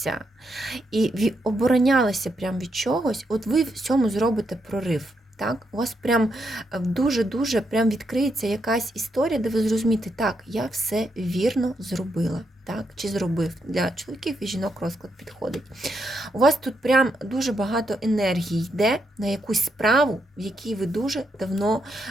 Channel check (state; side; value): normal; both; correlation 0.80